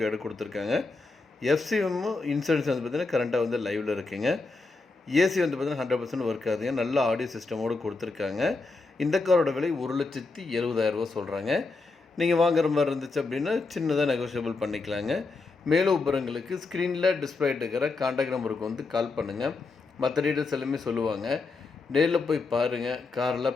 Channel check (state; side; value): quieter; right; 3.9 dB